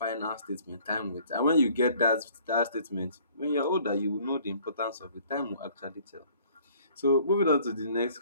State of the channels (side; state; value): both; inverted; correlation -0.56